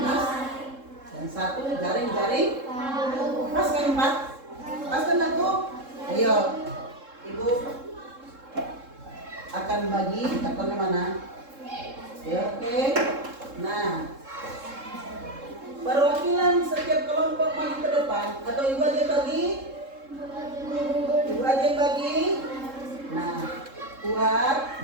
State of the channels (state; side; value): late; left; 3.7 ms